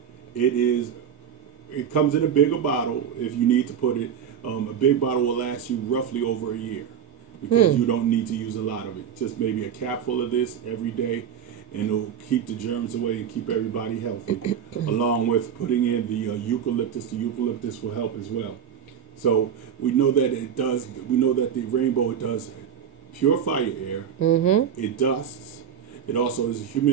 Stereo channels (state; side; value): quieter; left; 8.4 dB